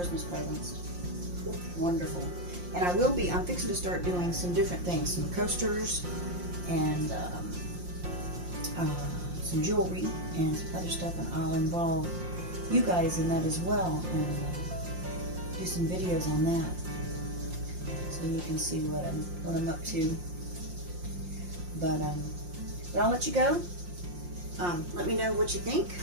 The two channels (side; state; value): left; late; 5.7 ms